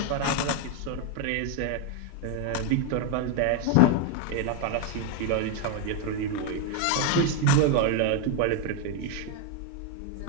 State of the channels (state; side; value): different; both; correlation 0.01